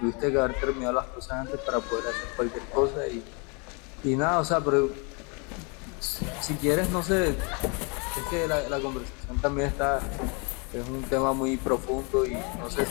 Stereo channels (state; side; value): quieter; right; 33.2 dB